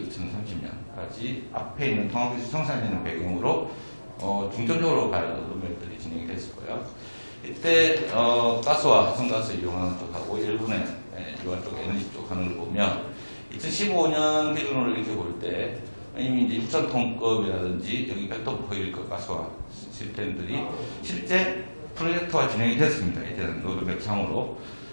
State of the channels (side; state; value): both; inverted; correlation -1.00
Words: 앞에 있는 통합기술 성산이라는 배경으로 중점적으로 갈 로드맵들이 진행이 됐었고요. 이때 가스와 합성가스 이용하는 쪽하고 일본의 유화 쪽 에너지 쪽 하는 걸 보면 2015년 기준으로 이렇게 볼 때 이미 이제 6,000톤급이라든지 여기 별도 호일급 가스화 시스템들이 실제 프로젝트화 진행이 됐습니다. 이제는 로드맵 상으로.